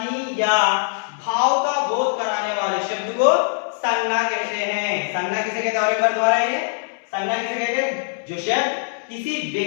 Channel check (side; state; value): right; silent; 64 dB below the other